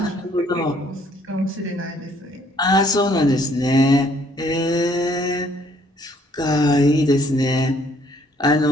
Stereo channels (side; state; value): both; normal; correlation 0.64